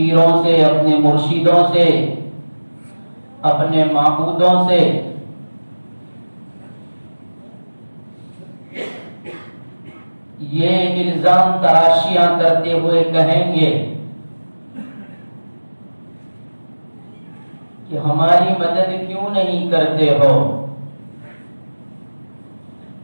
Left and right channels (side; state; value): both; inverted; correlation -1.00